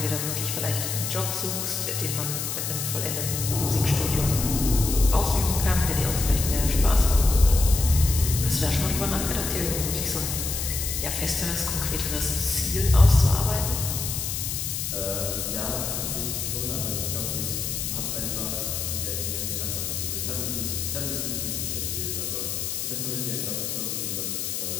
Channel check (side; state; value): left; noise; hiss, 3 dB below the sound